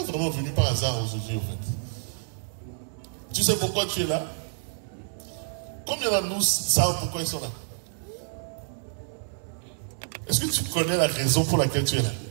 vraiment venu par hasard aujourd'hui, en fait. Tu sais pourquoi tu es là? Combien d'entre nous savent pourquoi ils sont là? Est-ce que tu connais la raison pour laquelle tu es là?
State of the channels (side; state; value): left; silent; 59 dB below the other